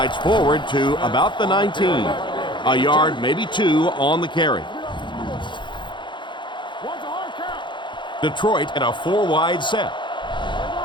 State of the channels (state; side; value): late; right; 0.23 ms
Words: forward to about the 19. A yard, maybe 2 on the carry. Detroit in a 4-wide set.